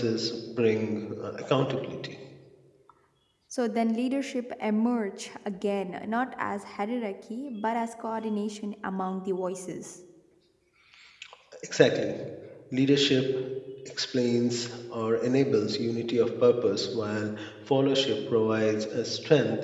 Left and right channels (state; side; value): identical; both; correlation 1.00